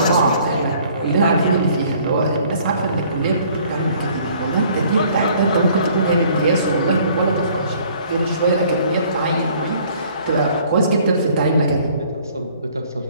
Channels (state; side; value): inverted; both; correlation -0.57